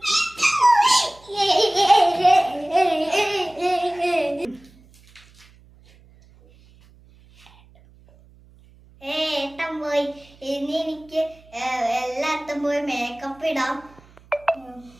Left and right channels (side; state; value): right; noise; hum, 27 dB below the sound